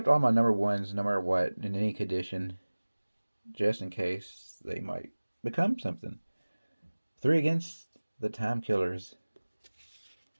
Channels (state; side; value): inverted; both; correlation -1.00